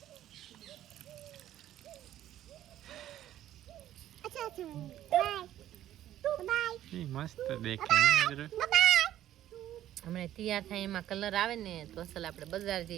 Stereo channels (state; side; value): quieter; left; 12.5 dB